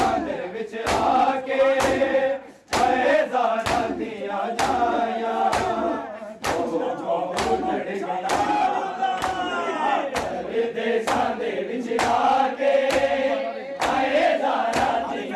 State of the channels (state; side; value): identical; both; correlation 1.00